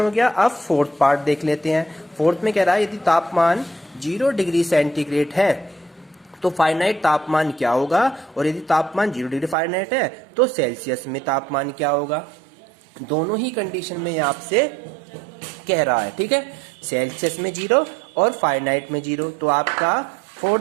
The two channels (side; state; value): left; drops out; at 9.6 s